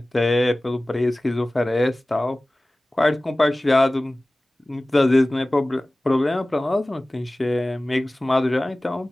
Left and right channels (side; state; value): both; normal; correlation 0.98